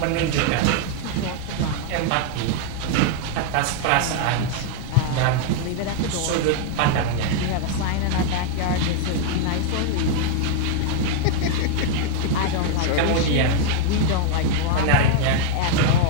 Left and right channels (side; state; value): both; different; correlation 0.00